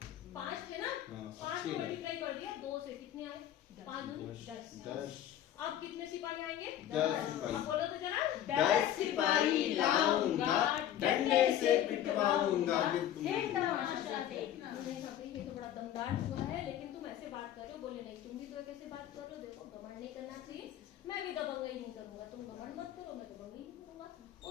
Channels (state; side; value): quieter; right; 11.3 dB